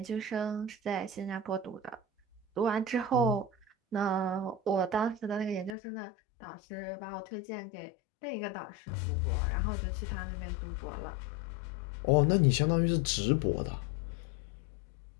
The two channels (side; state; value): right; drops out; at 5.8 s